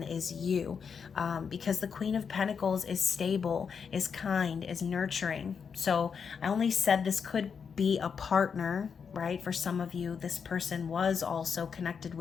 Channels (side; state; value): right; quieter; 6.4 dB